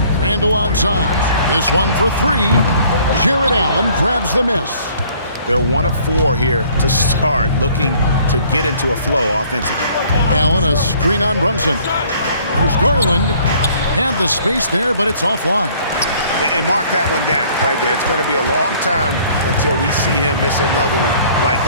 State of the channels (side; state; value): both; inverted; correlation -0.57